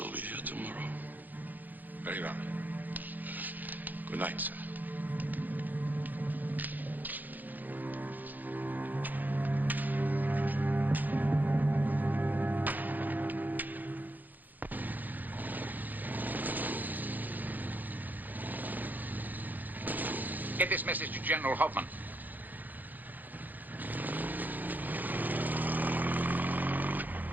be here tomorrow. Very well. Good night, sir. Get this message to General Hoffman.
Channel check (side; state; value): left; late; 0.084 ms